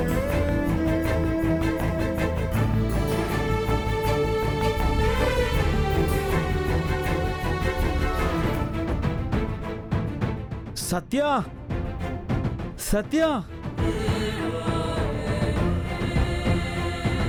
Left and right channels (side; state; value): both; identical; correlation 1.00